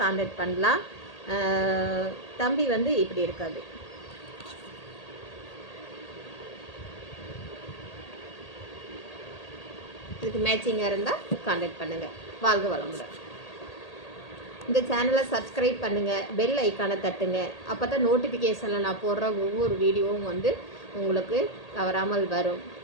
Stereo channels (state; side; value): late; right; 1.8 ms